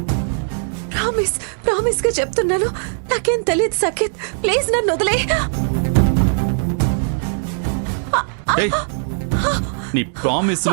ప్రామిస్ గా చెప్తున్నాను, నాకేం తెలియదు సఖిత్. ప్లీజ్ నన్ను వదిలే. ఏయ్, నీ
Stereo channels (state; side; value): silent; left; 66 dB below the other